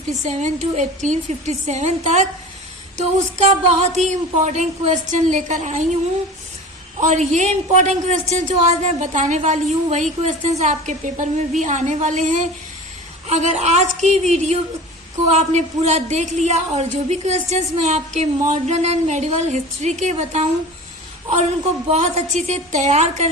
to 1857 तक, तो उसका बहुत ही इम्पोर्टेंट क्वेश्चन लेकर आई हूँ। और ये इम्पोर्टेंट क्वेश्चन जो आज मैं बताने वाली हूँ वही क्वेश्चंस आपके पेपर में भी आने वाले हैं। अगर आज की वीडियो को आपने पूरा देख लिया और जो भी क्वेश्चंस मैं आपके मॉडर्न एंड मेडिवल हिस्ट्री के बताऊँ और उनको बहुत अच्छी से तैयार कर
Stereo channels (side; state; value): both; normal; correlation 0.36